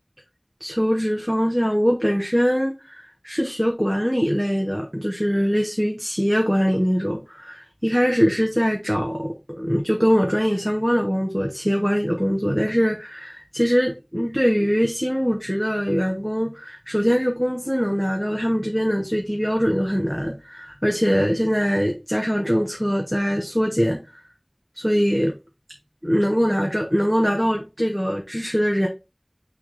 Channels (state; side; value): identical; both; correlation 1.00